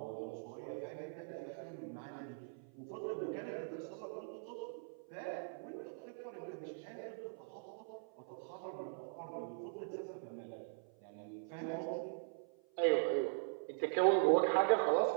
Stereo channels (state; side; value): silent; left; 50 dB below the other